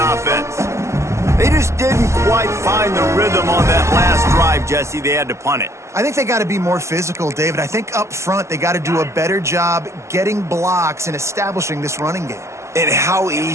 They just didn't quite find the rhythm on that last drive, Jesse. They had to punt it. I think they got to be more physical, David. I think up front they got to do a better job getting blocks and establishing this running game. And how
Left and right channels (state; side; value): late; left; 0.13 ms